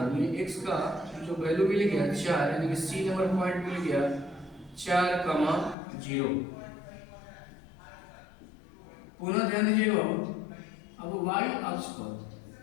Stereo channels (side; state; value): right; drops out; at 5.8 s